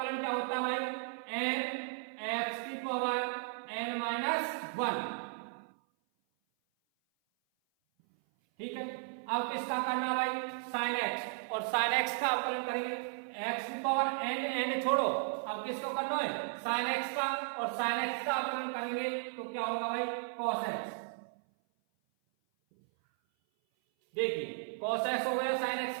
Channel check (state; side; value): silent; left; 54 dB below the other